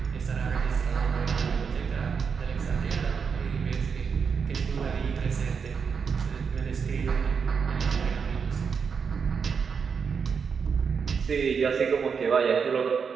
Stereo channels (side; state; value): left; quieter; 6.1 dB